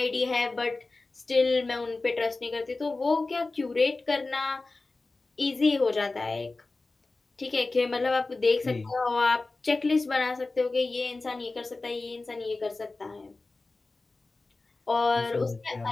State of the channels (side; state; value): right; quieter; 3.4 dB